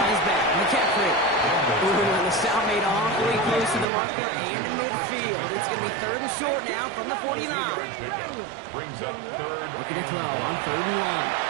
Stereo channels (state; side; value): drops out; left; at 3.9 s